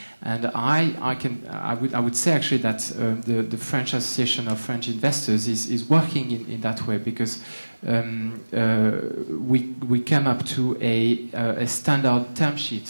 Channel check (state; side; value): inverted; both; correlation -1.00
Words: and I would say actually that the French Association of French Investors is working in that way, because we came up to a standard term